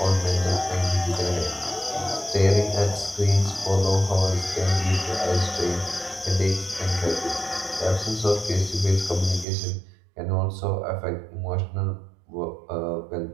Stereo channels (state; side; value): drops out; left; at 9.5 s